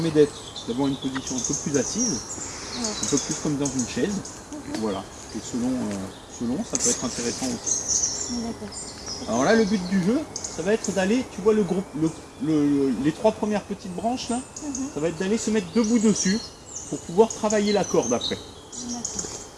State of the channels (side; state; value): both; identical; correlation 1.00